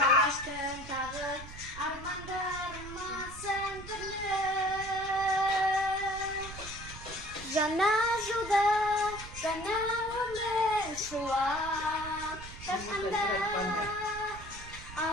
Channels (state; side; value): noise; right; rumble, 14 dB below the sound